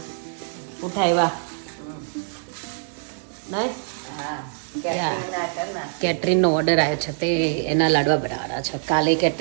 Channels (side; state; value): left; silent; 61 dB below the other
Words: ઉઠા એવા નહીં કેટરીનનો ઓર્ડર આવ્યો છે તે એના લાડવા બનાવવાના છે. કાલે